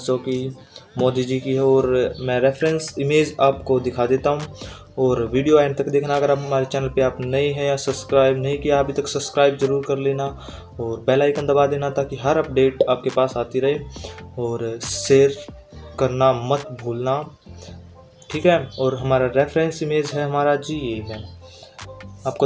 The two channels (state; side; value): identical; both; correlation 1.00